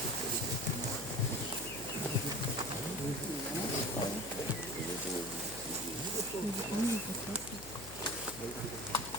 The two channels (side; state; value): left; noise; hum, 15 dB below the sound